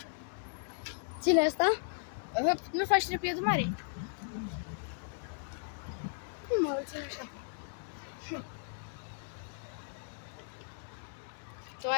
Ține asta? Nu faci trepietul mare? Nu mă ține așa. Tu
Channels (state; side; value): silent; right; 54 dB below the other